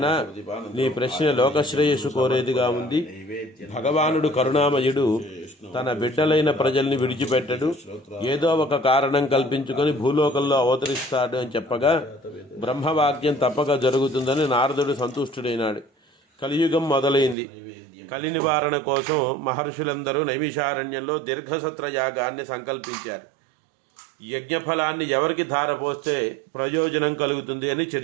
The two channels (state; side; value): drops out; left; at 17.4 s